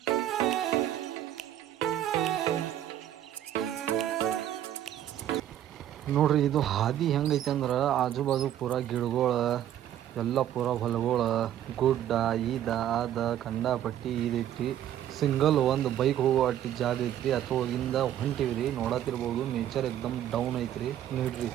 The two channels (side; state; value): left; quieter; 11.4 dB